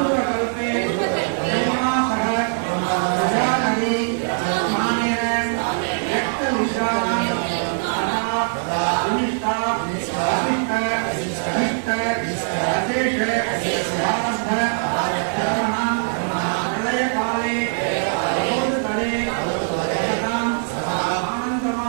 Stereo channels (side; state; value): left; silent; 63 dB below the other